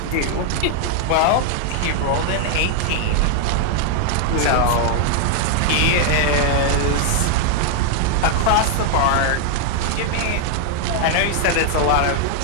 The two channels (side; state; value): both; different; correlation 0.00